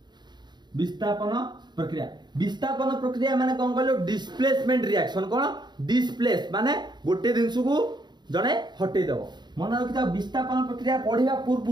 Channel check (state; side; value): late; left; 0.21 ms